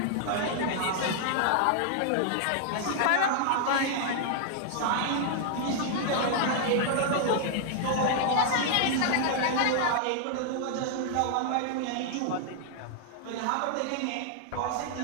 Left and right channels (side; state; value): both; different; correlation 0.00